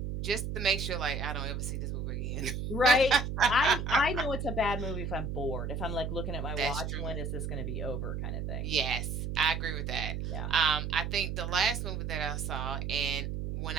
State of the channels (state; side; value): noise; right; hum, 3 dB below the sound